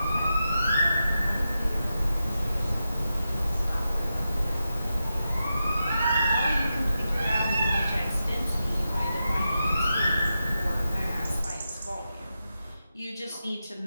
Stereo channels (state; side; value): inverted; both; correlation -0.90